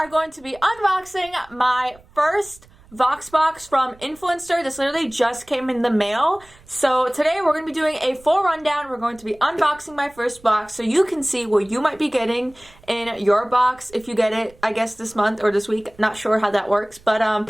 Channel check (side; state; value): right; noise; rumble, 26 dB below the sound